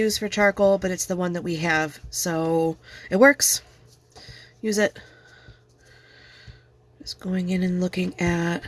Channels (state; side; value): identical; both; correlation 1.00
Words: for charcoal, but it's the one that we have, so it works. Use it. Just going in and looking at